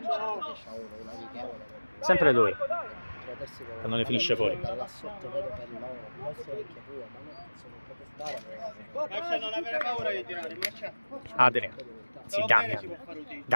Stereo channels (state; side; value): inverted; both; correlation -1.00